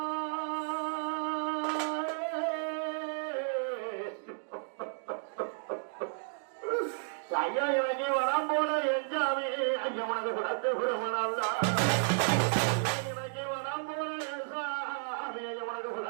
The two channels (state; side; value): silent; left; digital silence